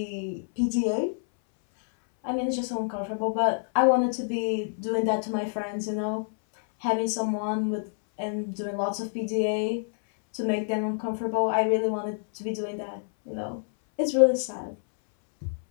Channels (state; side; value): silent; right; 60 dB below the other